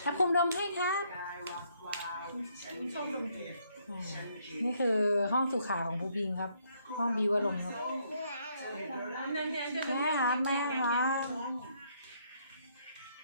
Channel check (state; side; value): inverted; both; correlation -0.70